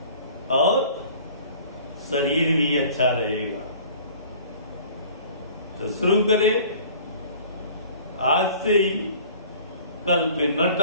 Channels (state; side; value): inverted; both; correlation -0.48